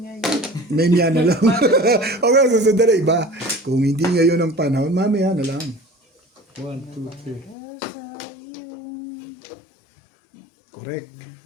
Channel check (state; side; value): drops out; right; at 7.6 s